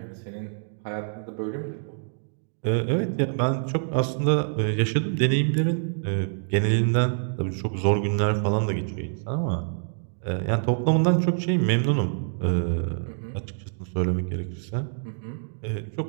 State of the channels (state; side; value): silent; left; digital silence